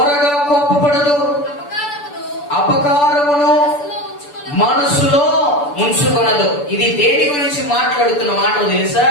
కోపపడదు, అపకారమును మనసులో ఉంచుకొనదు. ఇది దేని గురించి మాట్లాడుతున్న మాట తెలుసా?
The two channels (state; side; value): late; right; 6.9 ms